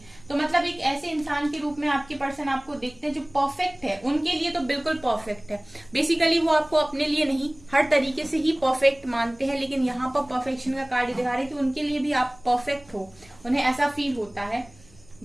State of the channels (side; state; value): right; noise; rumble, 26 dB below the sound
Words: तो मतलब एक ऐसे इंसान के रूप में आपके पर्सन आपको देखते हैं जो परफेक्ट है। उनके लिए तो बिल्कुल परफेक्ट है। बेसिकली वो आपको अपने लिए नहीं, हर तरीके से ही परफेक्ट मानते हैं, लेकिन यहाँ पर परफेक्शन का कार्ड दिखा रहे हैं कि उनके लिए भी आप परफेक्ट हो, उन्हें ऐसा फील होता है।